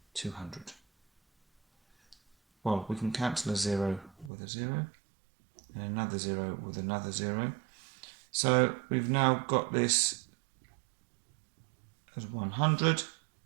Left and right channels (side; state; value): left; drops out; at 4.3 s